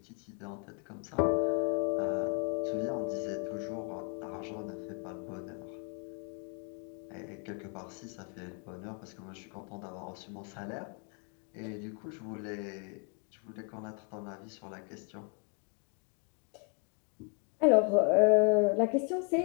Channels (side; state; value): right; quieter; 36.8 dB